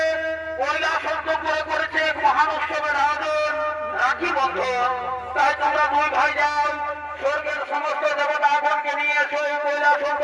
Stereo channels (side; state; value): both; identical; correlation 1.00